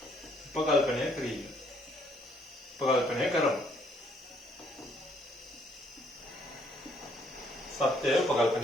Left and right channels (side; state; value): both; normal; correlation 0.67